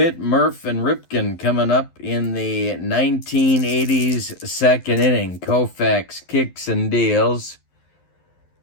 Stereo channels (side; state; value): right; late; 11 ms